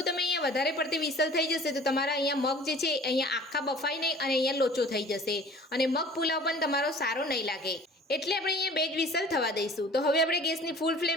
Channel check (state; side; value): normal; both; correlation 0.47